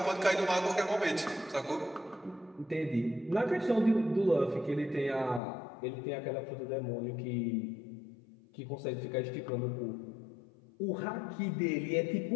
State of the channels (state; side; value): drops out; right; at 5.4 s